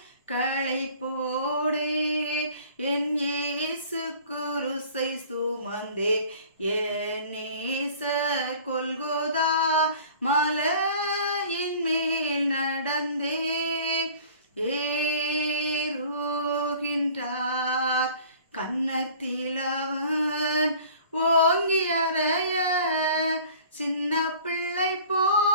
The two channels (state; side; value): inverted; both; correlation -0.48